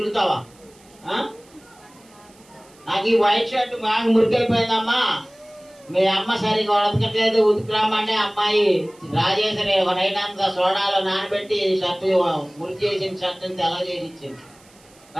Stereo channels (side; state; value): right; noise; hiss, 28 dB below the sound